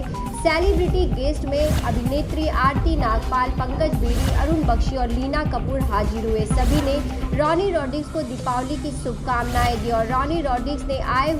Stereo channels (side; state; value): both; identical; correlation 1.00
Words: सेलिब्रिटी गेस्ट में अभिनेत्री आरती नागपाल, पंकज बेदी, अरुण बख्शी और लीना कपूर हाजिर हुए। सभी ने रॉनी रॉड्रिक्स को दीपावली की शुभकामनाएं दी और रॉनी रॉड्रिक्स ने आए